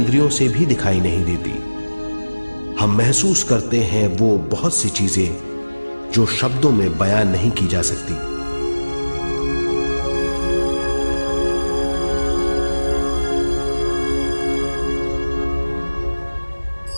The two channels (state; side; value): inverted; both; correlation -1.00